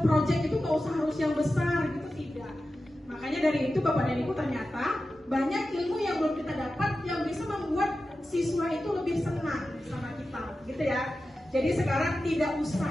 project itu nggak usah harus yang besar gitu, tidak. Makanya dari itu Bapak dan Ibu ternyata banyak ilmu yang belum kita dapat yang bisa membuat siswa itu lebih senang sama kita, gitu ya. Jadi sekarang tidak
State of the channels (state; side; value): normal; both; correlation 0.93